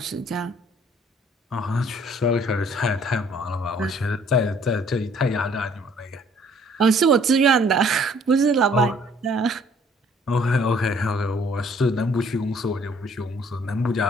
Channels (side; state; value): both; normal; correlation 0.60